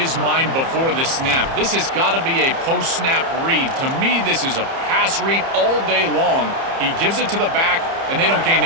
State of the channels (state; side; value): late; left; 30 ms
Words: mind before the snap. This has got to be a post-snap read. To me, this is a pass read all day long. He gives it to the back, and they don't gain